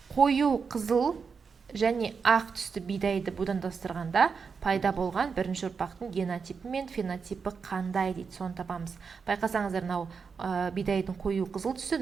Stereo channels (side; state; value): left; quieter; 5.6 dB